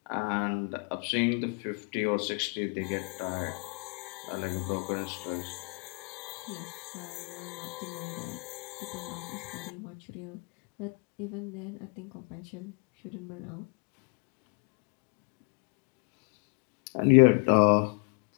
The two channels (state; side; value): quieter; right; 36.7 dB